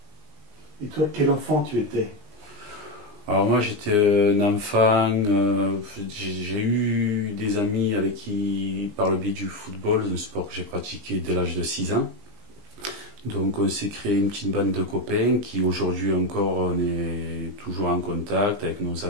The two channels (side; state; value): left; late; 19 ms